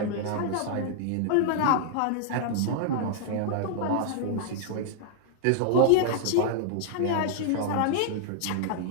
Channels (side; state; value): both; different; correlation -0.01